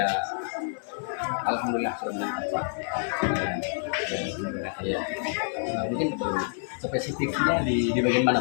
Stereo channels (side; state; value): right; silent; digital silence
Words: alhamdulillah sudah meningkat Pak. Ya. Mungkin spesifiknya di bagian mana